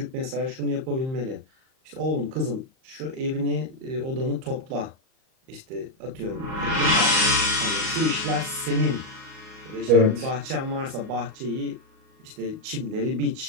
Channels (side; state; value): left; late; 38 ms